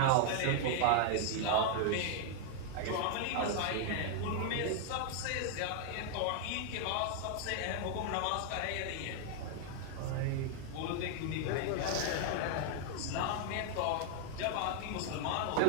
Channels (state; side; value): different; both; correlation 0.00